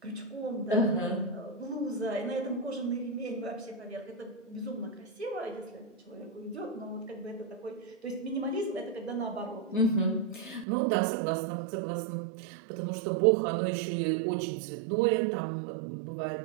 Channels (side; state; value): left; drops out; at 10.7 s